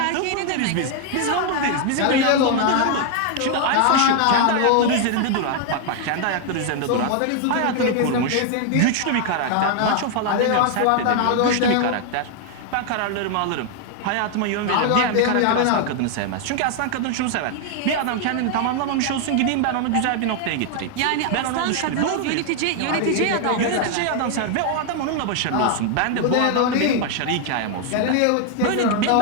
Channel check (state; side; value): different; both; correlation 0.00